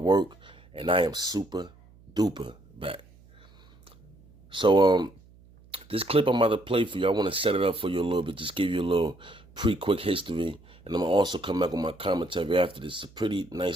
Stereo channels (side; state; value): right; noise; hum, 26 dB below the sound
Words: Work, and I am super duper back. So, this clip I'm about to play for you, I want to set it up for you a little bit, just give you a little quick history, and I'm going to also come back with my commentary after this. It's a pretty